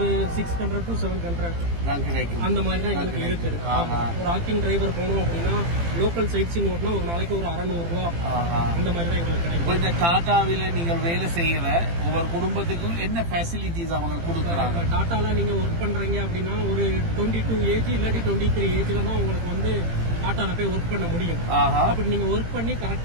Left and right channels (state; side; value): late; left; 18 ms